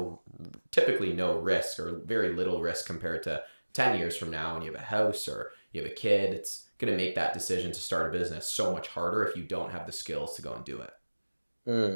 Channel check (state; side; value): inverted; both; correlation -1.00